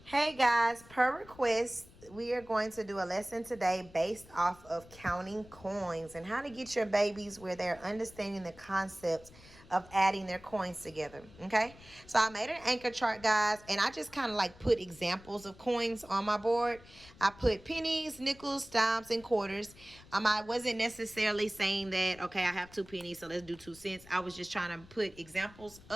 Hey guys, per request, we are going to do a lesson today based off of counting coins and how to get your babies where they're understanding the concept of adding their coins together. Okay, so I made an anchor chart, guys, and I just kind of like put examples of coins on my board. I put pennies, nickels, dimes, and quarters. I wasn't necessarily saying that, okay, I have 2 pennies, so let's do 2 cents. I was just trying to put examples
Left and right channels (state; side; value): noise; left; rumble, 22 dB below the sound